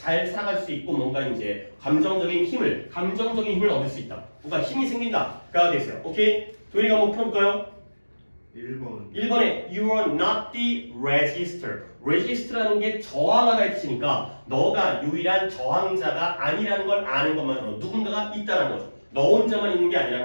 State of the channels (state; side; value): inverted; both; correlation -1.00